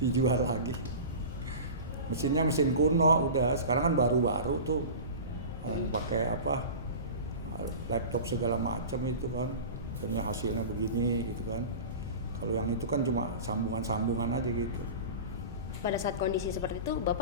lagi. Mesinnya mesin kuno udah, sekarang kan baru-baru tuh. Orang pakai laptop segala macam itu kan. Ternyata hasilnya begini gitu kan. Kalau yang itu kan cuma sambungan-sambungan aja gitu. pada saat kondisi seperti itu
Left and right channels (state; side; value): inverted; both; correlation -0.32